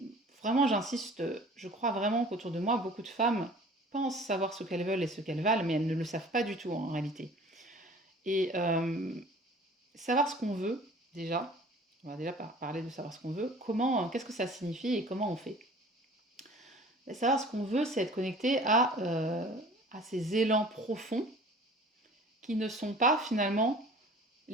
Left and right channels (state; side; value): normal; both; correlation 0.47